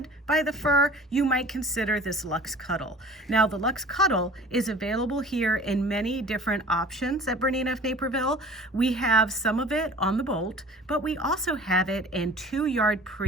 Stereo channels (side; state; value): both; normal; correlation 0.44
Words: by the fur, you might consider this Luxe Cuddle. Now, the Luxe Cuddle is available here in many different options at Bernina of Naperville. We have some of it on the bolt, but we also have it in 2 2-yard